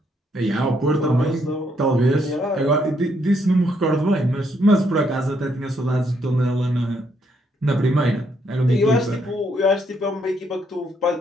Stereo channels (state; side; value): normal; both; correlation 0.73